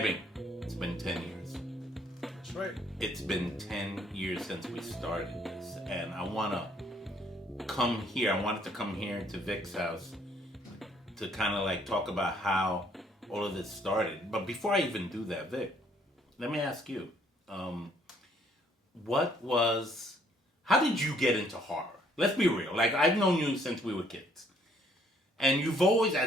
It's been 10 years. That's right. It's been 10 years since we started this, and I wanted to come here to Vic's house to kind of like talk about how all of this started. But before I even do that, Vic, let me ask you, how did you get into horror? Let's be real. Like, I've known you since we were kids. And you've always,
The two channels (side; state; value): both; normal; correlation 0.65